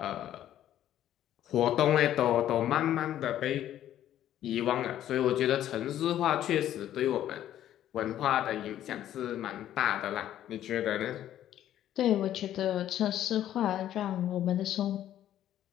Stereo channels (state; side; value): quieter; right; 11.8 dB